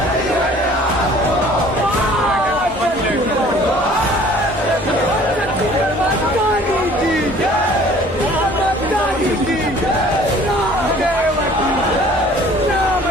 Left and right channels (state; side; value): normal; both; correlation 0.52